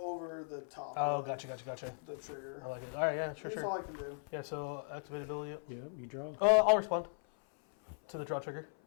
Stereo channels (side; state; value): right; silent; 53 dB below the other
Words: the top. Oh, of gotcha. The trigger. I like it. All right, yeah, That's sure. all I can do. Yeah, so activate ability. Yeah, you draw. I'll respond to the draw trigger.